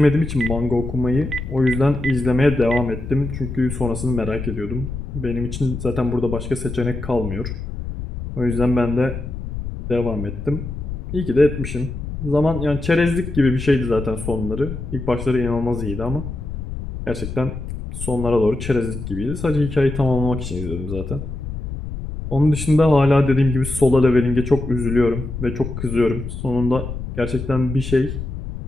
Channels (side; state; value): left; noise; rumble, 7 dB below the sound